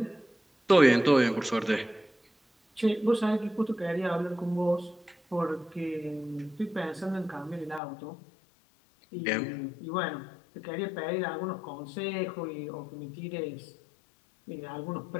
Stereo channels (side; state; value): right; drops out; at 7.8 s